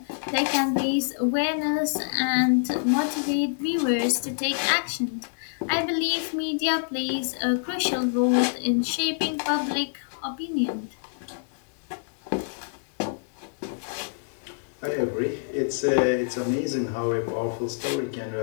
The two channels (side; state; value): right; silent; digital silence